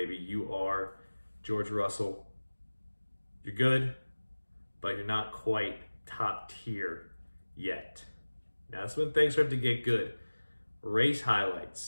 You are George Russell. You're good, but you're not quite top tier yet. Now that's when things start to get good. Race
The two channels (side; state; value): both; inverted; correlation -1.00